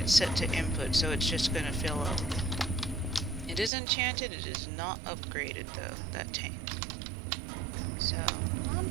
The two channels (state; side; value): drops out; left; at 3.7 s